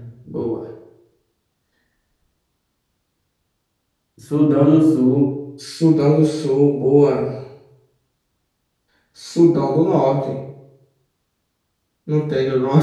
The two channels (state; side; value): identical; both; correlation 1.00